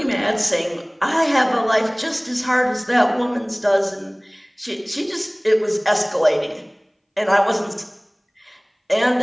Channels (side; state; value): both; identical; correlation 1.00